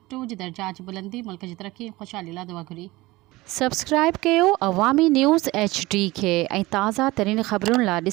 जी दर्जात जी बुलंदी, मुल्क जी तरक़ी ऐं ख़ुशहाली लाइ दुआ घुरी। सब्सक्राइब कयो अवामी न्यूज़ HD खे ऐं ताज़ा तरीन ख़बरुनि लाइ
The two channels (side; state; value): left; quieter; 20.1 dB